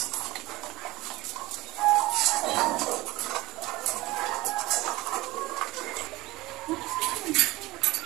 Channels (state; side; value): quieter; left; 19.7 dB